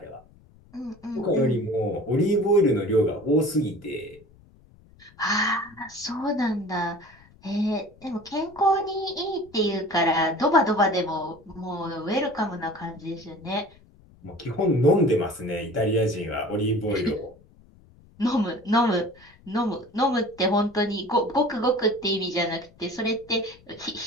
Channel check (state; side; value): noise; left; rumble, 27 dB below the sound